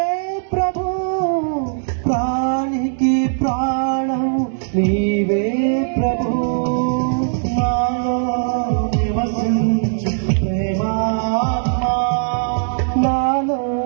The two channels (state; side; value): silent; left; digital silence